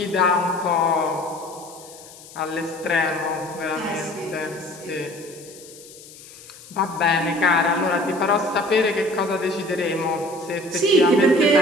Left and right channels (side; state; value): left; noise; hiss, 19 dB below the sound